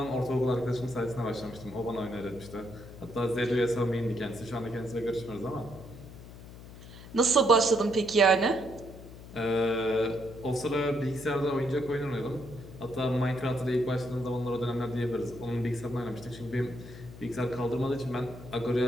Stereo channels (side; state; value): left; noise; hum, 16 dB below the sound